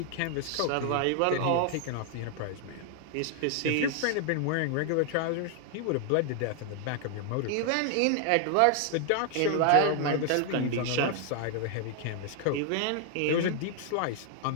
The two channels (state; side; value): different; both; correlation 0.00